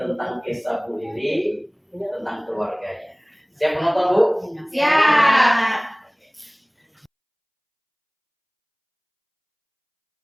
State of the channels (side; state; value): both; identical; correlation 1.00